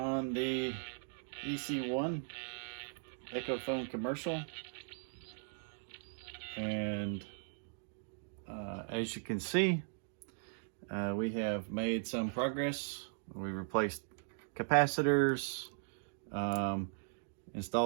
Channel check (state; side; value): silent; left; digital silence